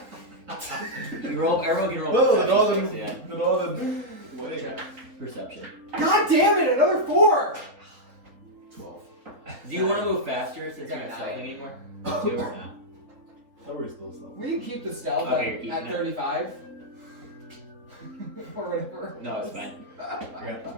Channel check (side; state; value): left; late; 3.8 ms